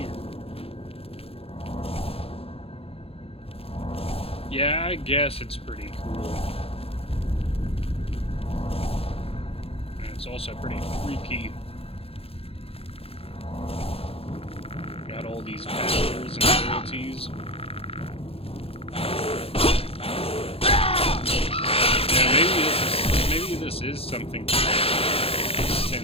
Yeah, I guess it's pretty cool. And it's also pretty freaky. Got all these powers and abilities. Yeah, maybe this is something to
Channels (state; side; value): late; right; 0.28 ms